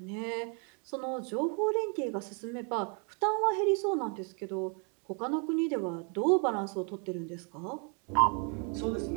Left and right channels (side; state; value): left; quieter; 37.1 dB